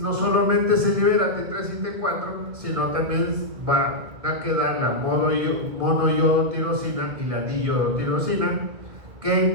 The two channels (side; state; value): left; late; 1.9 ms